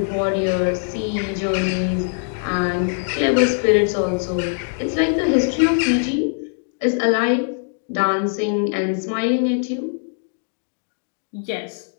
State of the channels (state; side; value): silent; right; digital silence